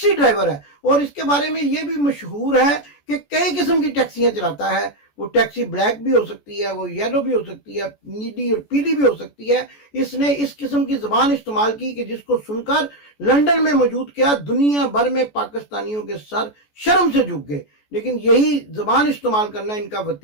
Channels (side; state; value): right; late; 14 ms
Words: ڈرائیور ہے، اور اس کے بارے میں یہ بھی مشہور ہے کہ کئی قسم کی ٹیکسیاں چلاتا ہے. وہ ٹیکسی بلیک بھی ہو سکتی ہے، وہ یلو بھی ہو سکتی ہے، نیلی اور پیلی بھی ہو سکتی ہے. اس نے اس قسم کی زبان استعمال کی کہ جس کو سن کر لندن میں موجود کیا دنیا بھر میں پاکستانیوں کے سر شرم سے جھک گئے. لیکن یہی زبان استعمال کرنا ان کا